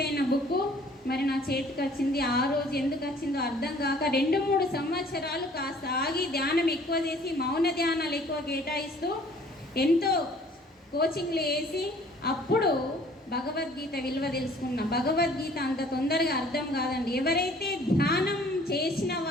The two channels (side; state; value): both; normal; correlation 0.54